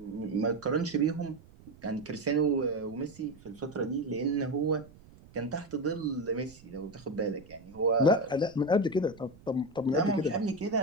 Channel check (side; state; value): right; noise; rumble, 23 dB below the sound